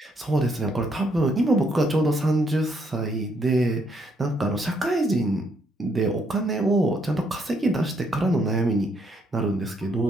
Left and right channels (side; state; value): both; normal; correlation 0.72